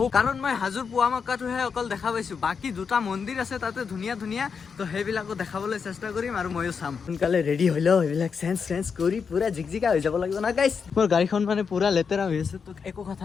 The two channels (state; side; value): quieter; right; 6.0 dB